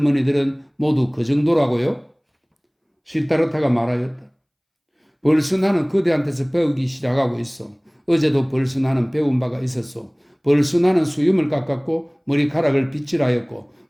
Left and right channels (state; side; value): identical; both; correlation 1.00